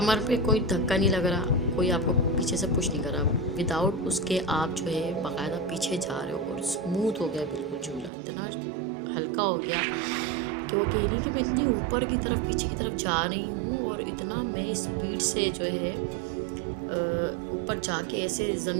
पे कोई धक्का नहीं लग रहा, कोई आपको पीछे से पुश नहीं कर रहा, विदाउट उसके आप जो है बाकायदा पीछे जा रहे हो और स्मूथ हो गया बिल्कुल झूला, इतना हल्का हो गया कि वो कह रही कि मैं इतनी ऊपर की तरफ, पीछे की तरफ जा रही हूँ और इतना मैं स्पीड से जो है ऊपर जाके ऐसे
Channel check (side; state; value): left; drops out; at 8.1 s